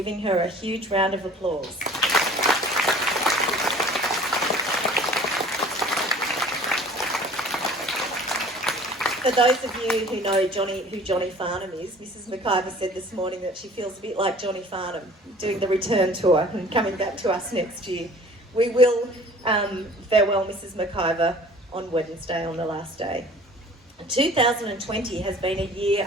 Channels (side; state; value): both; normal; correlation 0.48